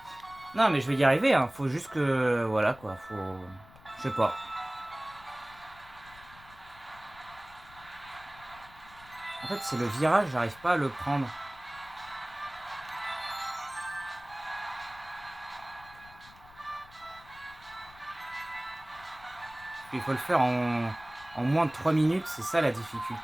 Non, mais je vais y arriver, hein. Faut juste que... Voilà, quoi. Faut... Je sais pas. En fait, c'est le virage, j'arrive pas à le prendre. Il faut le faire en moins de 3 minutes. C'est ça la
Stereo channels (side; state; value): left; noise; rumble, 22 dB below the sound